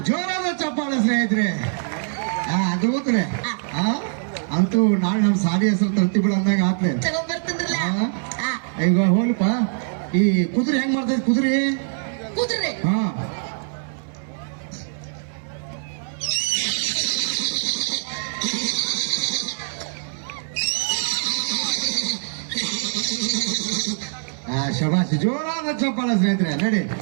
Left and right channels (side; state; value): left; silent; 57 dB below the other